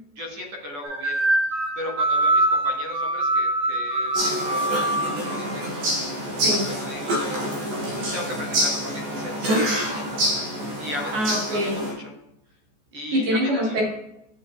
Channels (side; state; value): left; late; 14 ms